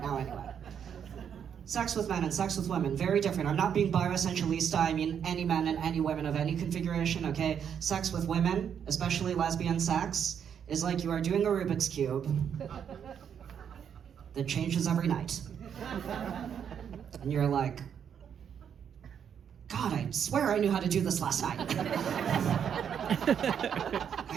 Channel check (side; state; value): left; quieter; 8.1 dB